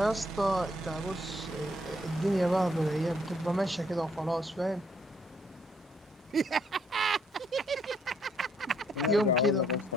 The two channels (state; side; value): normal; both; correlation 0.69